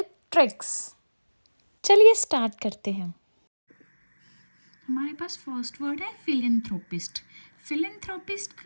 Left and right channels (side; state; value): both; inverted; correlation -1.00